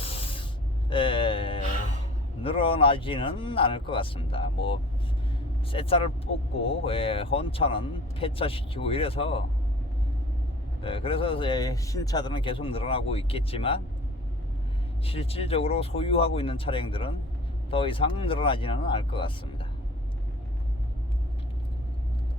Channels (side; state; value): both; normal; correlation 0.46